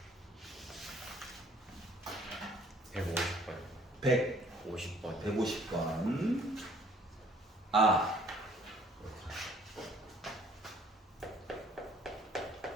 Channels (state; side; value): normal; both; correlation 0.57